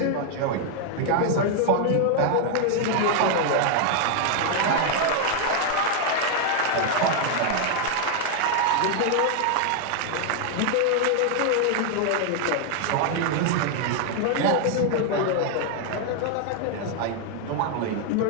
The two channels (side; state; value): both; different; correlation 0.00